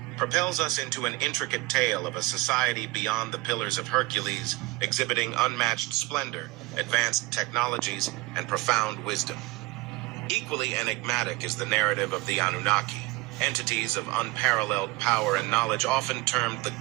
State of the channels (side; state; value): left; quieter; 22.1 dB